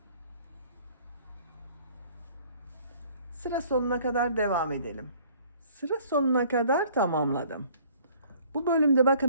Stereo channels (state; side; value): inverted; both; correlation -0.55